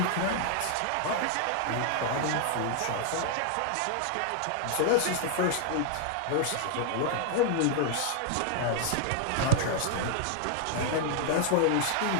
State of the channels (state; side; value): different; both; correlation 0.00